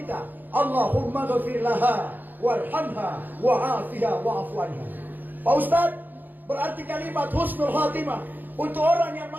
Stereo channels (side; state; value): left; late; 0.087 ms